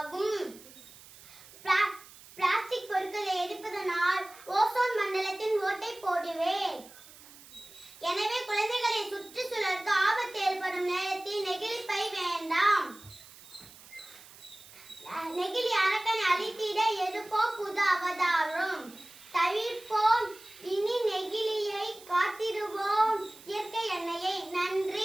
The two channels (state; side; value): noise; right; hiss, 20 dB below the sound